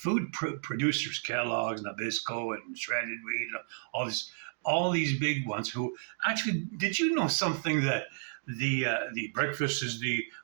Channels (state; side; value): silent; left; digital silence